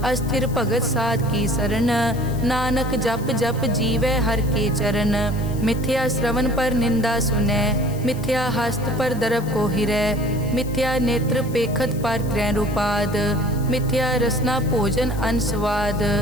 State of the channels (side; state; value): left; noise; hiss, 19 dB below the sound